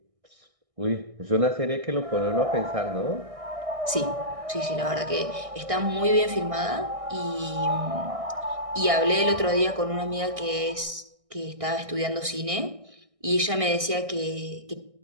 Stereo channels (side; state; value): left; late; 1.6 ms